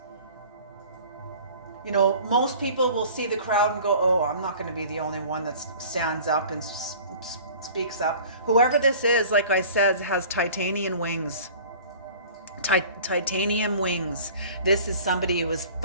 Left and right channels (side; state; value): both; inverted; correlation -0.45